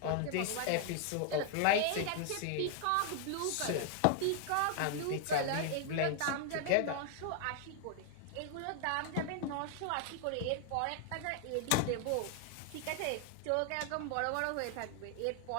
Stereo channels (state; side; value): different; both; correlation 0.00